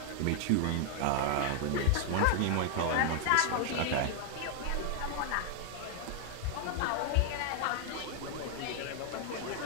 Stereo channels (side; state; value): both; different; correlation 0.00